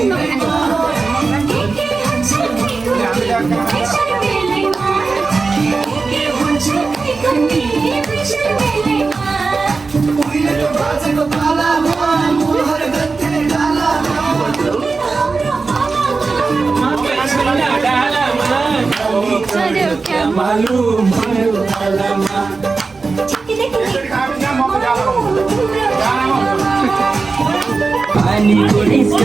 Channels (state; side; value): quieter; left; 4.2 dB